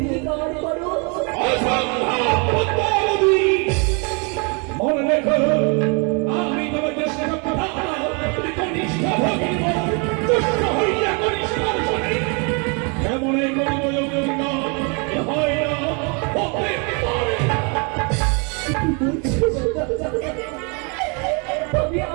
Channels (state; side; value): quieter; left; 34.4 dB